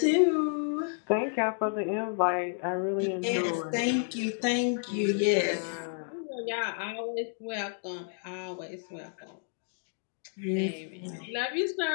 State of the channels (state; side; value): silent; right; 57 dB below the other